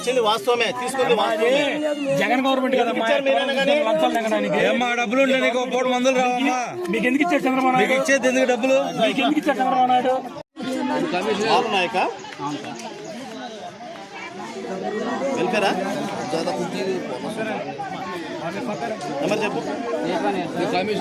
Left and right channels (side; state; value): both; identical; correlation 1.00